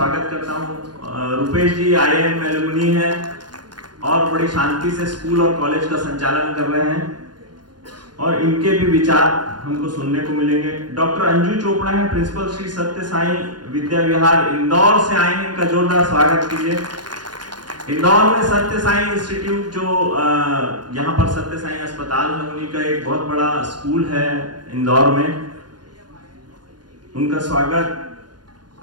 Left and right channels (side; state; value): left; late; 0.70 ms